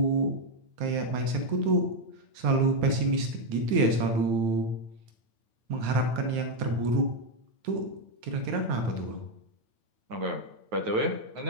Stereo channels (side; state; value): left; late; 9.0 ms